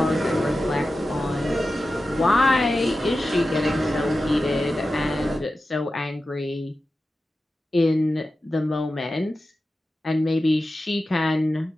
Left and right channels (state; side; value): normal; both; correlation 0.93